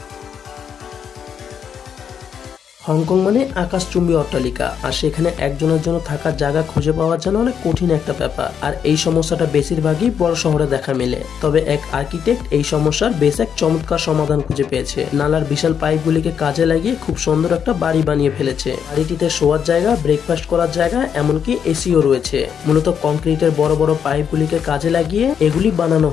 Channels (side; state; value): right; quieter; 7.8 dB